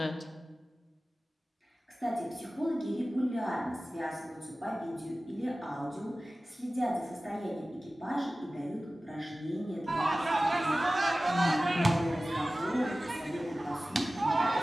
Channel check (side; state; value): both; normal; correlation 0.96